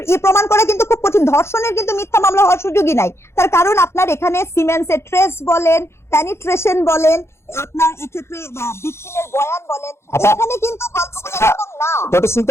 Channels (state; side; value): late; right; 0.13 ms